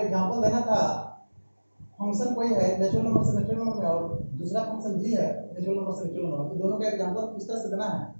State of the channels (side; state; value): both; inverted; correlation -1.00